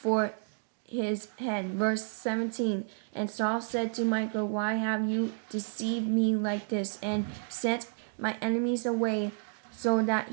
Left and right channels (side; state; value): left; silent; digital silence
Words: for his head. Verse 17. And Saul said to Michal, "Why have you deceived me like this, and sent my enemies away, so that